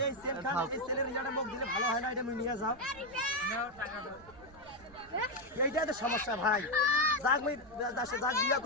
এই সেলের রিজাল্টের মুখ দিলে ভালো হয় না, এটা নিয়ে যাও। এইটাই তো সমস্যা ভাই। যাক বিয়া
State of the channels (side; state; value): right; noise; rumble, 22 dB below the sound